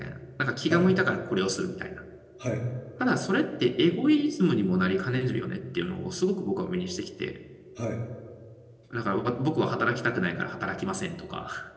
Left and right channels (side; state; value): both; identical; correlation 1.00